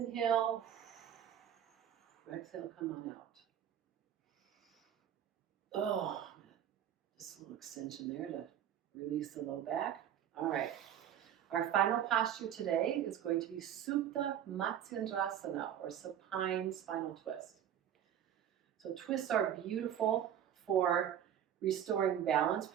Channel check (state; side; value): quieter; left; 10.0 dB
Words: Exhale, come on out. Oh, just a little extension there to release the low back. All right. Our final posture today is going to be Supta Matsyendrasana, or supine spinal twist. So twists are beautiful for restoring balance,